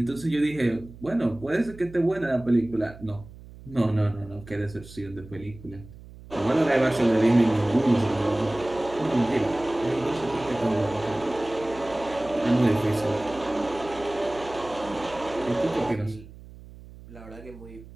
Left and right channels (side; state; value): right; noise; hum, 18 dB below the sound